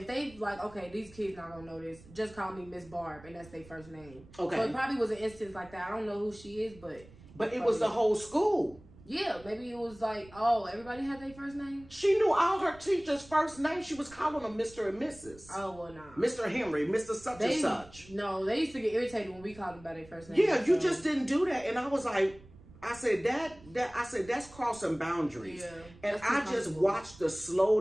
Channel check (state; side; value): noise; right; rumble, 22 dB below the sound